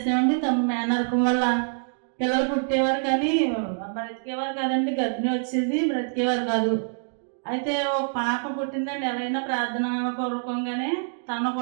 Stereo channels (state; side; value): silent; left; digital silence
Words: మేనరకం వల్ల పిల్లలు పుట్టేవారు కానీ బ్రతికేవారు కాదండి, గర్భిణి వచ్చేది, బ్రతికేవారు కాదు. అయితే ఒక పాప పుట్టిందండి. ఎవరైనా ప్రార్థన పూర్వకంగానే తను